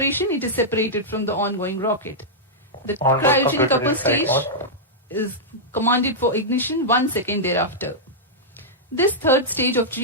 it is separated from the ongoing rocket. The cryogenic upper stage is commanded for ignition 1 second thereafter. This third stage of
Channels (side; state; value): both; normal; correlation -0.08